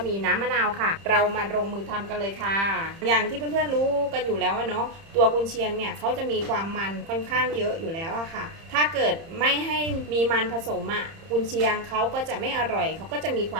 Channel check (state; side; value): late; left; 30 ms